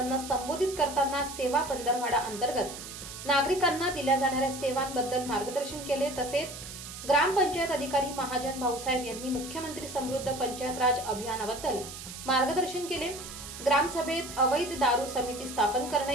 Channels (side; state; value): right; noise; hiss, 11 dB below the sound